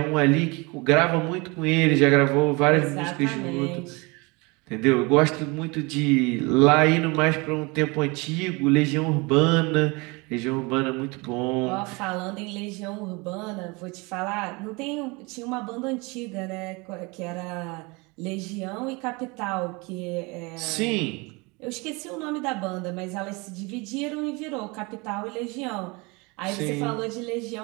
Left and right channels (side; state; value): left; quieter; 27.0 dB